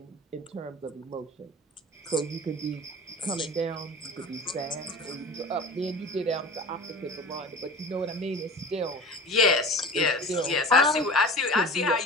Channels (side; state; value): both; normal; correlation 0.36